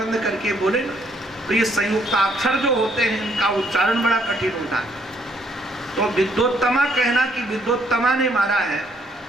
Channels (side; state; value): both; normal; correlation 0.69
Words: करके बोले ना। तो ये संयुक्ताक्षर जो होते हैं इनका उच्चारण बड़ा कठिन होता है। तो विद्योत्तमा कहना कि विद्योत्तमा ने मारा है,